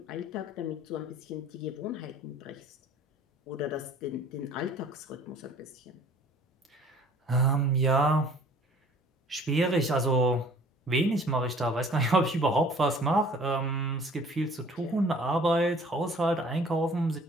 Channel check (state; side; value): normal; both; correlation 0.52